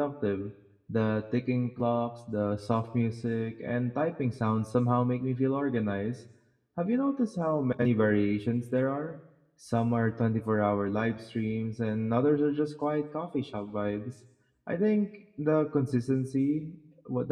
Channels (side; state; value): both; identical; correlation 1.00